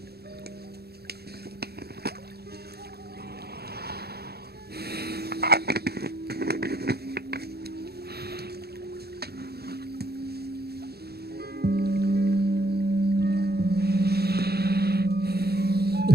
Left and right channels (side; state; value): left; late; 0.46 ms